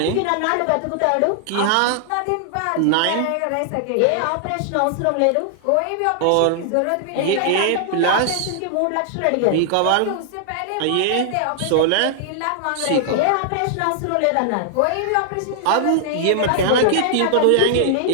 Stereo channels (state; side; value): different; both; correlation -0.01